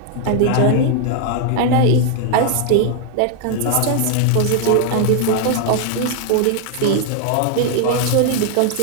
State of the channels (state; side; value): different; both; correlation 0.00